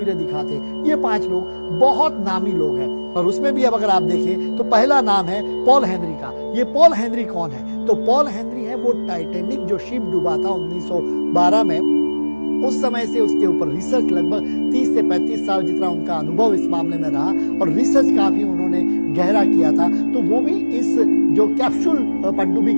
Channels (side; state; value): both; inverted; correlation -1.00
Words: दिखाते। ये 5 लोग बहुत नामी लोग हैं, और उसमें भी अब अगर आप देखें तो पहला नाम है पॉल हेनरी का। ये पॉल हेनरी कौन है? तो पॉल हेनरी है वो टाइटैनिक जो शिप डूबा था 1912 में, उस समय से उसके ऊपर रिसर्च, लगभग 30 से 35 साल जितना उनका अनुभव इस मामले में रहा, और रिसर्च काफी उन्होंने गहरा किया था, तो वो भी इस जो कैप्सूल पनडुब्बी